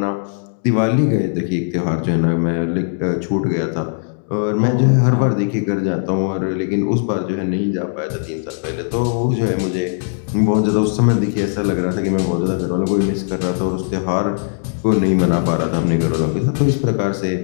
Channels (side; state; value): right; silent; digital silence